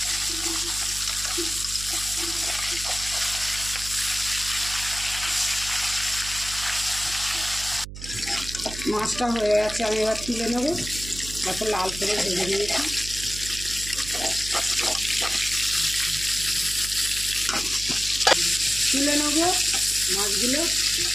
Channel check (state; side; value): noise; right; hum, 11 dB below the sound